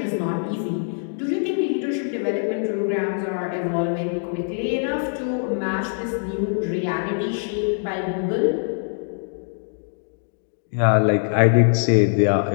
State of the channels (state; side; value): silent; right; digital silence